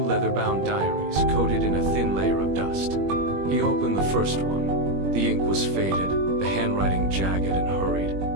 leather-bound diaries coated in a thin layer of dust. He opened the first one. The ink was faded, the handwriting jagged and hurried,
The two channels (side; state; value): left; late; 21 ms